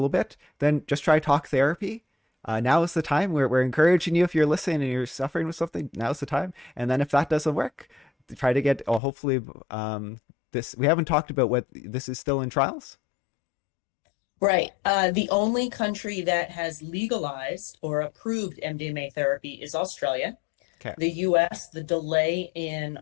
bit, then just try talk therapy. Now is the time. We're encouraging you, if you're listening and you're suffering with something, now's the time. And then if that doesn't work, try to get, hopefully, this, we haven't talked about what this is still in trials. Right. The only country that has legalized or approved MDMA therapy is Australia. Okay. The US, the delay in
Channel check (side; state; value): right; drops out; at 9.0 s